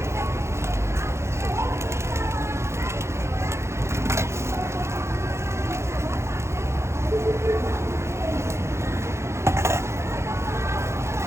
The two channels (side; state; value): left; late; 0.13 ms